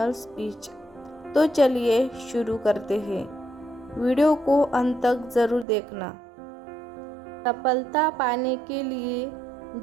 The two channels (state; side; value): drops out; left; at 5.7 s